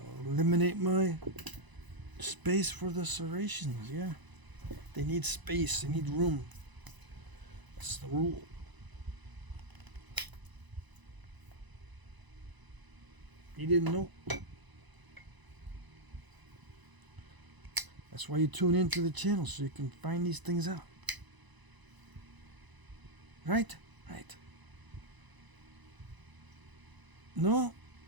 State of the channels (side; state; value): left; late; 1.0 ms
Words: eliminate my space for the serrations. Yeah, they need space, they need room. That's the rule. You didn't know? That's why you tune into the channel, so you can find these things out. Right? Right. No,